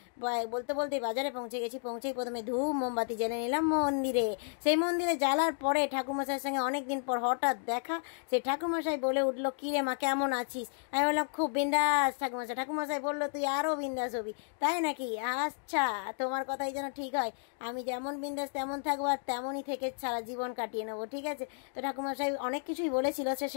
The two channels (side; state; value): right; silent; digital silence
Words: বলতে বলতেই বাজারে পৌঁছে গেছি। পৌঁছেই প্রথমে ধূপ মোমবাতি জ্বেলে নিলাম মন্দিরে। সেই মন্দিরে জ্বালার পরে ঠাকুরমশাইয়ের সঙ্গে অনেকদিন পর হঠাৎ দেখা। সেই ঠাকুরমশাই বলে উঠলো কি রে মা কেমন আছিস? আমি বললাম খুব বিন্দাস ঠাকুরমশাই। ঠাকুরমশাই বললো তুই আরও বিন্দাস হবি। তাই নাকি? আচ্ছা, তোমার কথাই যেন ঠিক হয়। আমি যেমন বিন্দাস তেমন থাকবো, আর তেমনই থেকে সারা জীবন কাটিয়ে নেবো। ঠিক আছে, তো ঠাকুরমশাই অনেক কিছুই বলেছিল,